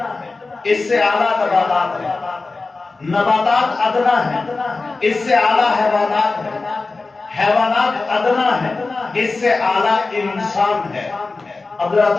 اس سے اعلیٰ نباتات ہیں، نباتات ادنا ہے، اس سے اعلیٰ حیوانات ہیں، حیوانات ادنا ہے، اس سے اعلیٰ انسان ہے۔ اب ذرا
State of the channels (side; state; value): right; quieter; 3.7 dB